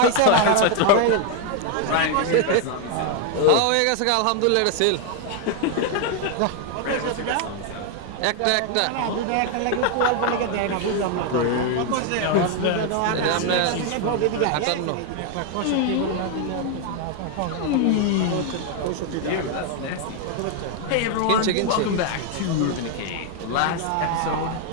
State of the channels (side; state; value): both; different; correlation 0.01